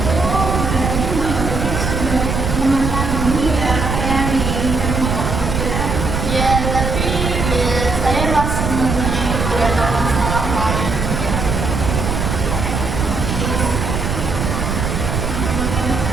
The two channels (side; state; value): right; noise; rumble, 2 dB below the sound